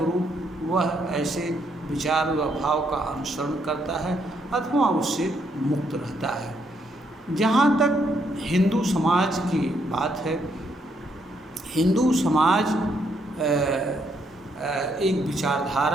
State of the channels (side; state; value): both; normal; correlation 0.74